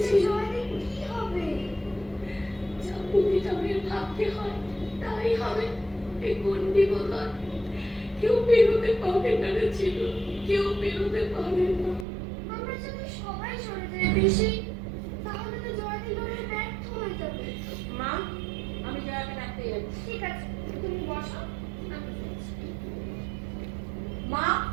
জয়দি কি হবে? যা প্রতিটা মেয়ের ভাবতে হয় তাই হবে। এই গন্ডি বোধহয় কেউ বেরোতে পারে না রে ছিল, কেউ বেরোতে পারে না। আমরা যদি সবাই সরে যাই পিসি, তাহলে তো জয়দি লড়াই ব্যর্থ হয়ে যাবে। মা, আমি জয়াকে ডাকতে যাচ্ছি। ঠিক আছে, তুমি বসো, আমি যাচ্ছি। মা,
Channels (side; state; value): left; drops out; at 12.1 s